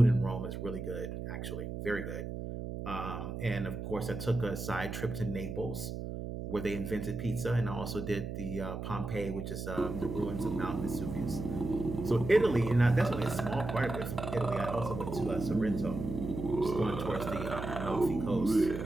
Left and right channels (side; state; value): right; noise; hum, 6 dB below the sound